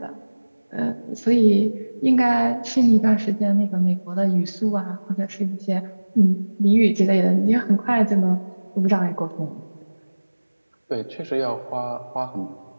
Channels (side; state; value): both; inverted; correlation -1.00